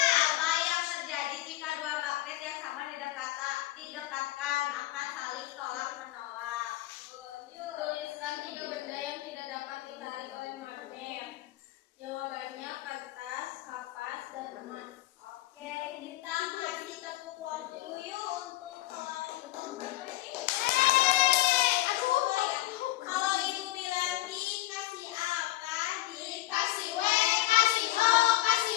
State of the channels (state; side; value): quieter; right; 16.8 dB